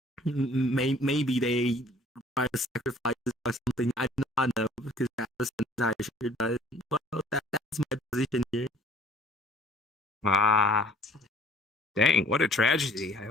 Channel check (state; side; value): normal; both; correlation 0.54